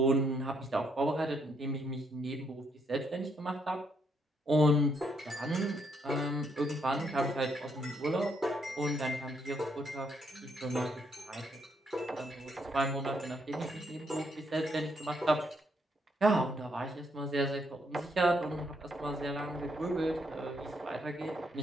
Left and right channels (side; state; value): both; normal; correlation 0.74